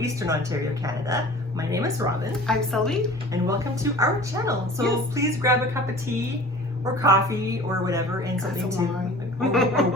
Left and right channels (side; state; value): both; normal; correlation 0.43